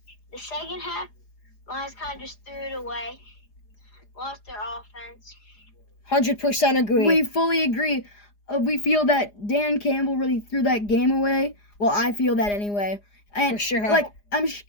The second half, Lions kind of just threw it away, lost their offense. 100% agree. We fully agree. We feel that Dan Campbell really threw that game away. Well, I feel that anyway. And for sure.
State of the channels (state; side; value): late; right; 4.9 ms